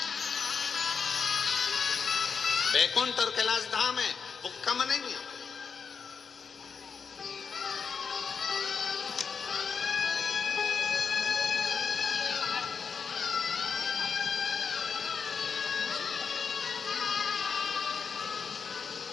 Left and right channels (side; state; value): right; quieter; 5.9 dB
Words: बैकुंठ और कैलाश धाम है, वो कम नहीं है।